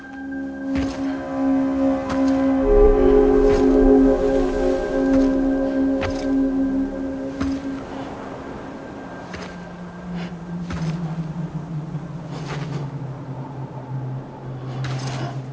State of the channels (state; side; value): identical; both; correlation 1.00